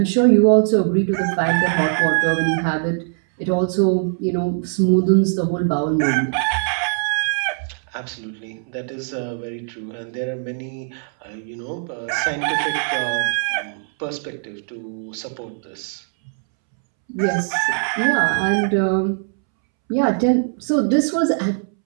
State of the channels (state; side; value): silent; left; 65 dB below the other